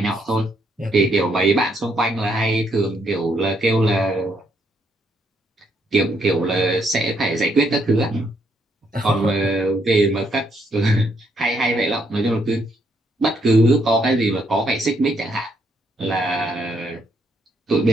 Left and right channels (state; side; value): normal; both; correlation 0.73